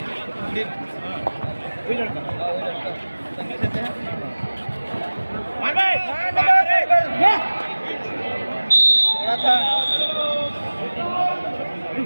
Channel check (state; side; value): inverted; both; correlation -1.00